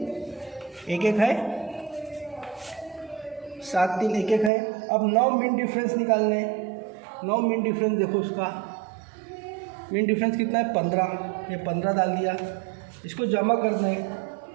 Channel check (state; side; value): drops out; left; at 4.5 s